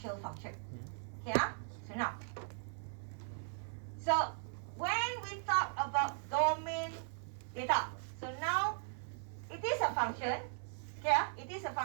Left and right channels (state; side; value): silent; left; 52 dB below the other